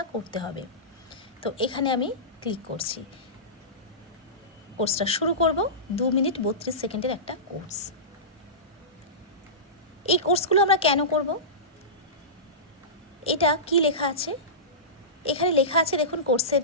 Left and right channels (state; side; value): normal; both; correlation -0.20